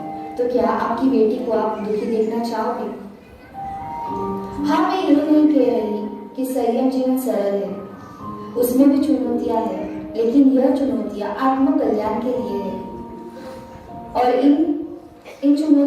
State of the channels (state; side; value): identical; both; correlation 1.00